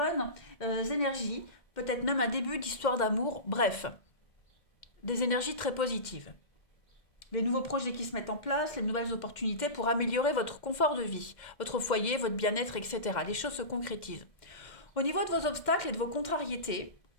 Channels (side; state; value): right; late; 2.1 ms